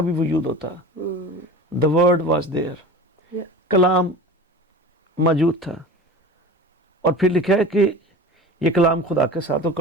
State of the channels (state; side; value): normal; both; correlation 0.36